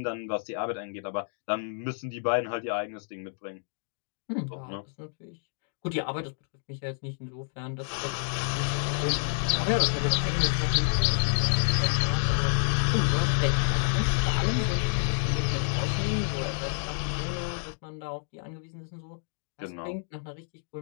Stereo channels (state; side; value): silent; right; digital silence